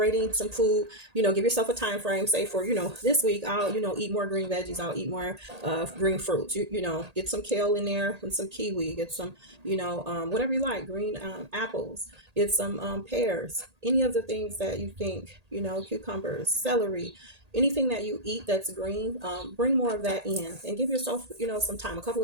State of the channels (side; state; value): left; late; 1.8 ms